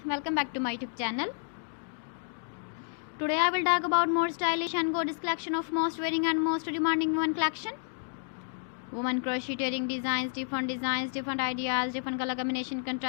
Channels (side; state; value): right; silent; digital silence